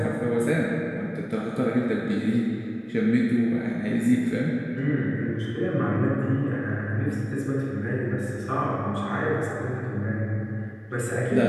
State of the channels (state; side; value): identical; both; correlation 1.00